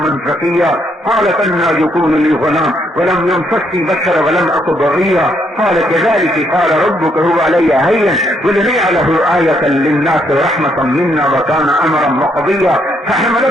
زكيا قالت انا يكون لي غلام ولم يمسسني بشر ولم اك بغيا قال كذلك قال ربك هو علي هين ولنجعله آية للناس ورحمة منا وكان امرا مقضيا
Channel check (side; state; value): both; normal; correlation 0.73